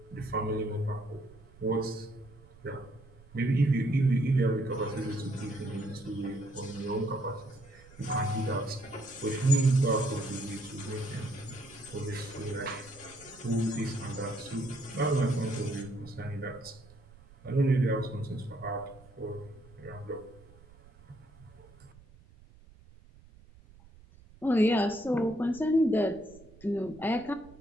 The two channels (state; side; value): noise; right; rumble, 23 dB below the sound